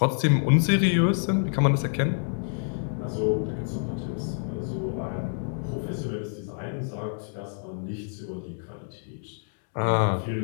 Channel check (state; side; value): silent; right; digital silence